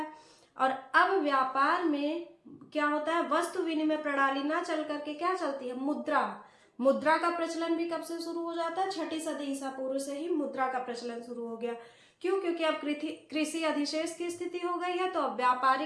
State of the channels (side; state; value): both; identical; correlation 1.00